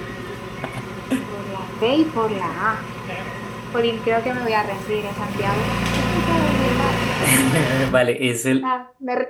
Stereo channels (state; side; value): identical; both; correlation 1.00